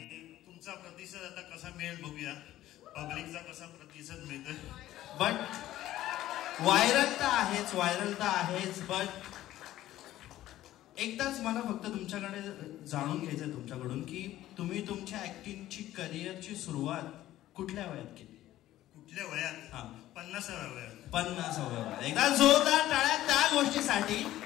तुमचा प्रतिसाद आता कसा मिळेल बघूया. पब्लिकचा कसा प्रतिसाद मिळतोय. बट व्हायरल तर आहेच. बट एकदाच मला फक्त तुमच्याकडे जाणून घ्यायचंय तुमच्याकडून की तुम्ही तुमच्या ऍक्टिंगची करिअरची सुरुवात कुठल्या वयात केली? कुठल्या वयात? हा, 50व्या वयात. 50व्या वयात. एकदा जोरदार टाळ्या त्या गोष्टीसाठी.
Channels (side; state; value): right; quieter; 14.3 dB